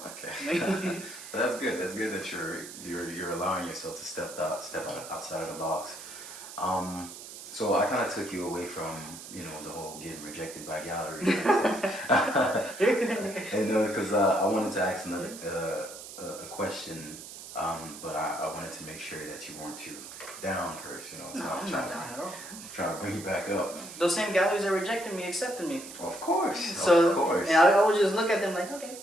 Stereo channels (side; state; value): right; noise; hiss, 13 dB below the sound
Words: Okay. But that's good. That's good that you're allowing yourself to step outside of the box. So I kind of took you away from, you know, the whole getting rejected by galleries and stuff. And because I wanted to ask another a question, but I wanted to make sure that you weren't too down first. You know, so I'm not down at all. Trying to bring you back up. Those same galleries that rejected me accepted me. Of course. So, of course. And I would just look at them like, okay.